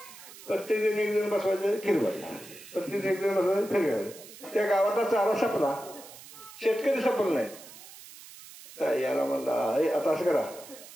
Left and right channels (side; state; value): right; noise; hiss, 17 dB below the sound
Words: जण बसवायचं खीर भात प्रत्येक एक जण बसवायचं खीर घालायचं त्या गावातला चारा संपला शेतकरी संपला नाही तर याला म्हणला आता असं करा